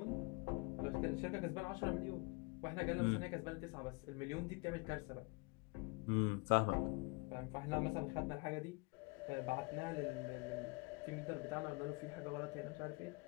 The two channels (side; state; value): right; quieter; 29.0 dB